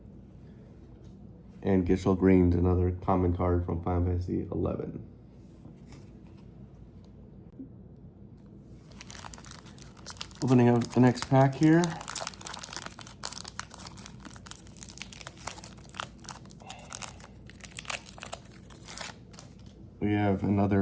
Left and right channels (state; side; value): identical; both; correlation 1.00